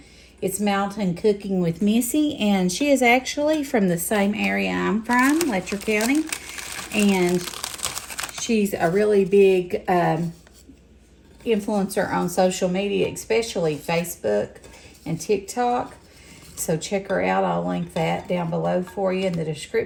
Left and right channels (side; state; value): both; identical; correlation 1.00